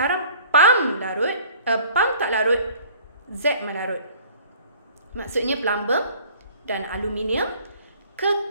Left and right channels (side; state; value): both; inverted; correlation -0.51